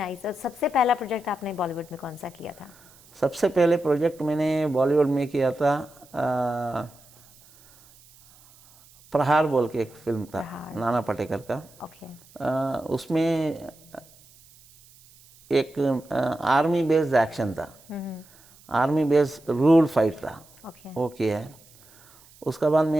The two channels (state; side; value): noise; right; hiss, 26 dB below the sound